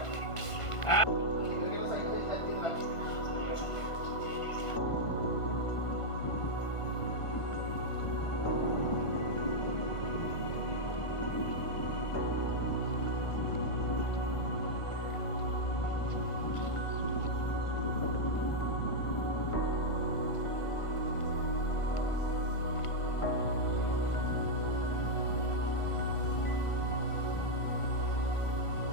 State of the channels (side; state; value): right; late; 1.5 ms